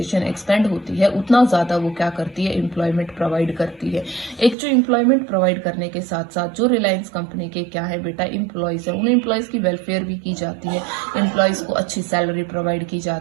एक्सपेंड होती है उतना ज़्यादा वो क्या करती है, एम्प्लॉयमेंट प्रोवाइड करती है। एक जो एम्प्लॉयमेंट प्रोवाइड करने के साथ साथ जो रिलायंस कंपनी के क्या है बेटा एम्प्लॉयज़ है, उन एम्प्लॉयज़ की वेलफेयर भी की जाती है, एम्प्लॉयज़ को अच्छी सैलरी प्रोवाइड की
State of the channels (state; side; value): drops out; left; at 4.5 s